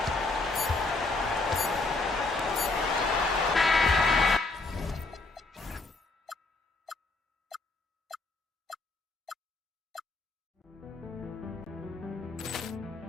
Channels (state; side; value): quieter; right; 3.4 dB